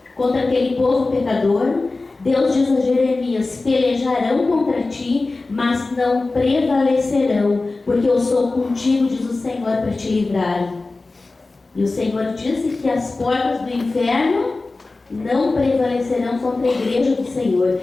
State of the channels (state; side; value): quieter; right; 3.4 dB